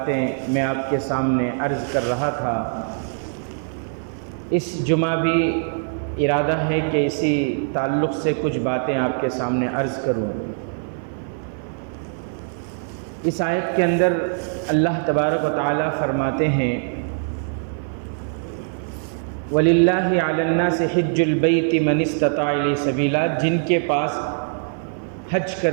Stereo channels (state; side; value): silent; left; 57 dB below the other